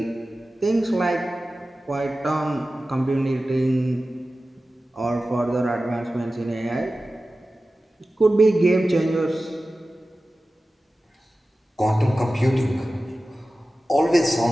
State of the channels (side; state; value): both; normal; correlation 0.95